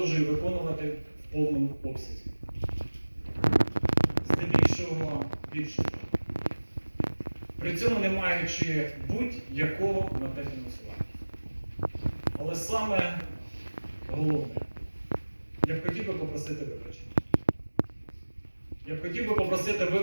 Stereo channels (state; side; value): inverted; both; correlation -1.00